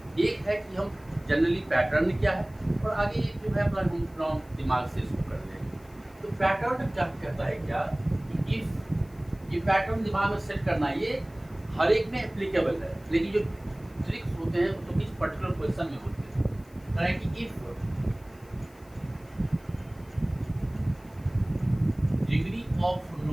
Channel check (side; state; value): left; noise; hiss, 28 dB below the sound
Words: एक है कि हम जनरली पैटर्न क्या है, और आगे ये जो है अपना दिमाग से इसको कर लेंगे। तो पैटर्न क्या कहता है, क्या कि इफ, ये पैटर्न दिमाग में सेट करना, ये हर एक में एप्लीकेबल है, लेकिन जो ट्रिक्स होते हैं वो तो किस पर्टिकुलर क्वेश्चन में होते हैं। कह रहे हैं कि if degree of